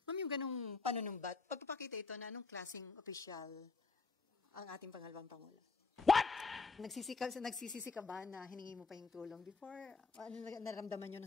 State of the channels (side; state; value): right; quieter; 4.4 dB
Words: yung ganung panunumbat, pagpapakita ito na anong klaseng opisyal ang ating pangalawang Pangulo? What? Nagsisisi ka ba na hiningi mo pa yung tulong before? Ano naramdaman nyo